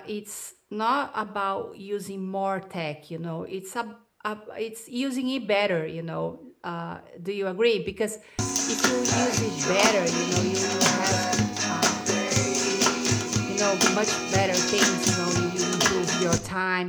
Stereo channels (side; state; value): both; identical; correlation 1.00